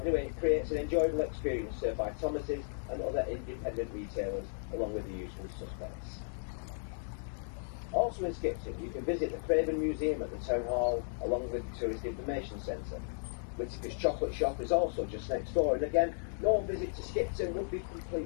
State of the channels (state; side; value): silent; right; 54 dB below the other